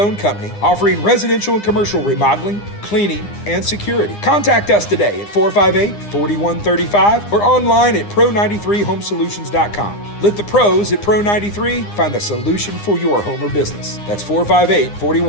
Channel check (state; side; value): late; right; 9.8 ms